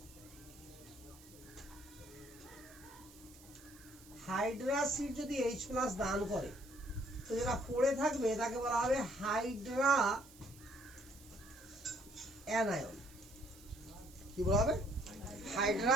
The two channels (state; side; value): noise; right; hiss, 22 dB below the sound